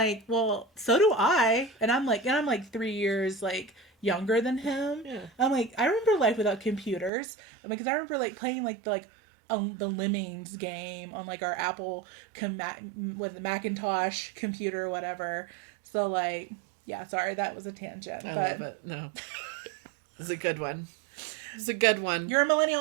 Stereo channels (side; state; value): left; drops out; at 7.1 s